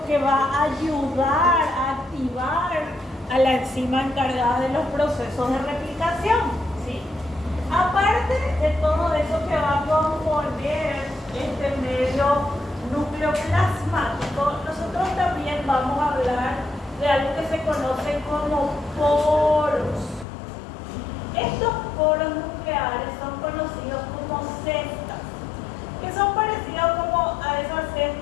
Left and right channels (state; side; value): drops out; right; at 20.2 s